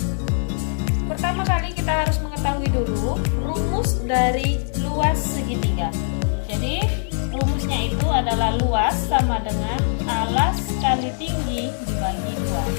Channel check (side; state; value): right; silent; digital silence